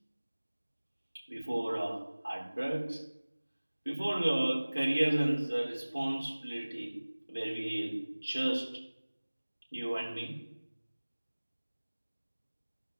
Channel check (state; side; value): inverted; both; correlation -1.00